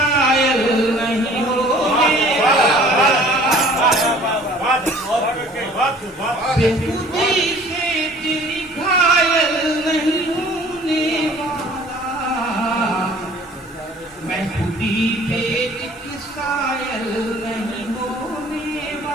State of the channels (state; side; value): normal; both; correlation 0.51